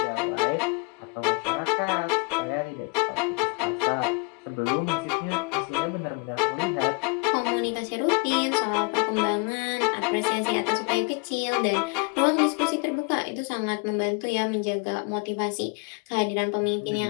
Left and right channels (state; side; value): quieter; right; 31.7 dB